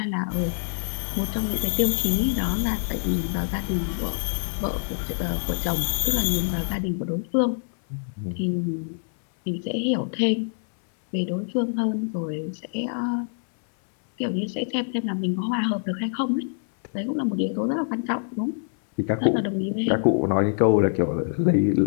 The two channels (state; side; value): silent; right; 62 dB below the other